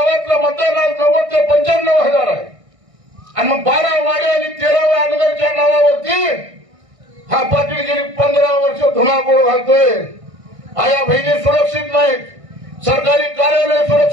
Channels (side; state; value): left; late; 1.6 ms